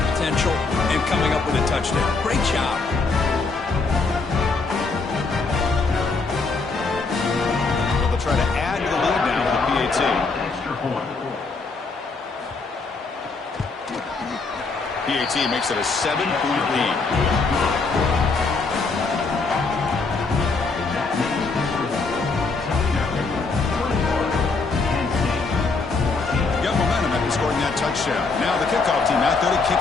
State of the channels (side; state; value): right; quieter; 4.1 dB